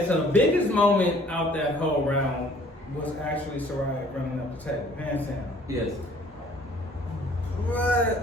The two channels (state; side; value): normal; both; correlation 0.56